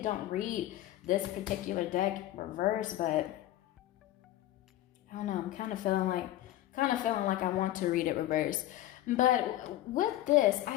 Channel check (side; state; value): right; quieter; 14.4 dB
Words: don't read this particular deck reverse, but I don't know. I'm kind of feeling like I want to read it reverse. But with this, I